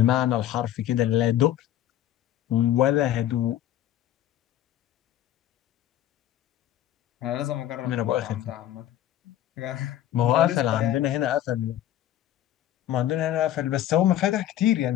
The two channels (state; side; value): quieter; right; 12.2 dB